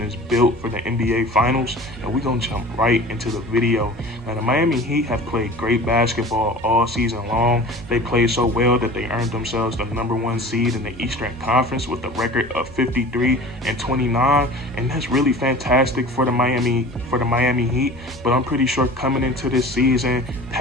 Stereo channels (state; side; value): normal; both; correlation 0.40